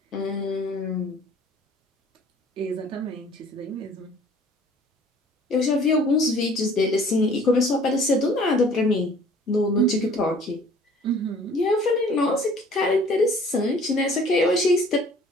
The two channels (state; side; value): normal; both; correlation 0.52